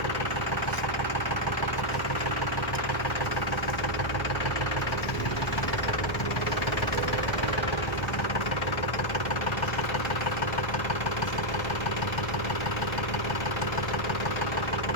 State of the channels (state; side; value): late; right; 1.4 ms